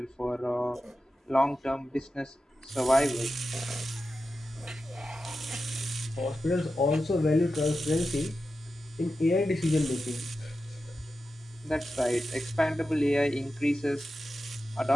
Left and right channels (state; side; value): normal; both; correlation 0.91